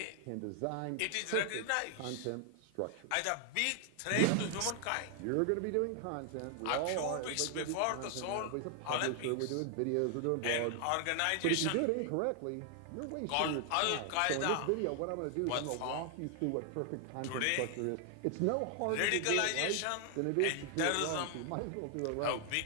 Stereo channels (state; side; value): different; both; correlation 0.00